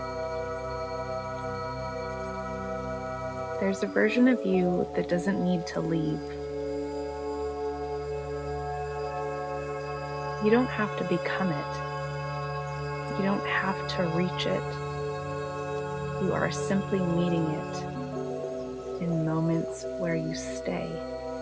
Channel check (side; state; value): both; identical; correlation 1.00